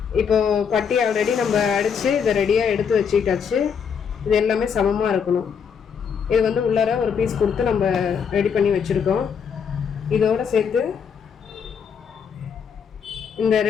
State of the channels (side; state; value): right; quieter; 6.8 dB